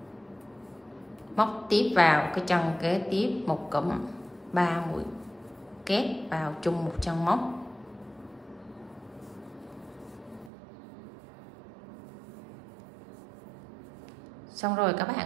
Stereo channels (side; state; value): left; drops out; at 10.5 s